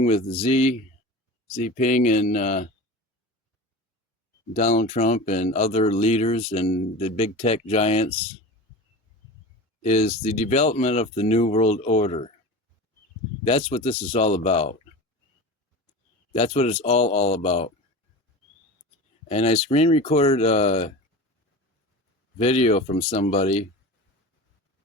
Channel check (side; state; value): both; normal; correlation 0.32